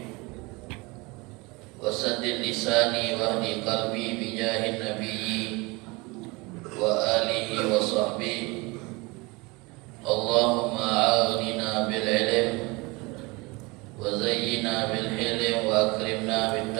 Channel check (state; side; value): quieter; left; 25.3 dB